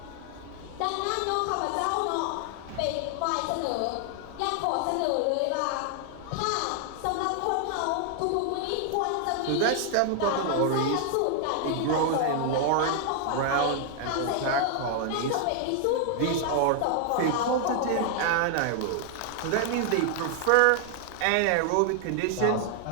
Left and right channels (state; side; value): different; both; correlation 0.00